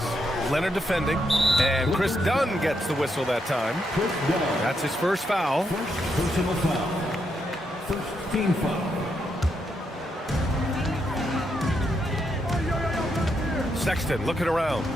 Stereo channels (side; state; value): both; normal; correlation 0.80